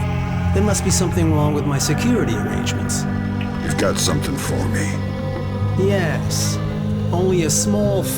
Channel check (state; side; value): identical; both; correlation 1.00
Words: There must be something wrong with my security arrangements. You've got something for me. Yes. Only a small